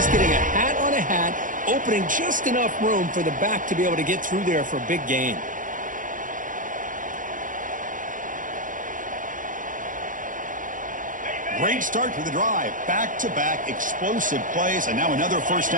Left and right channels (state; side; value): late; left; 0.38 ms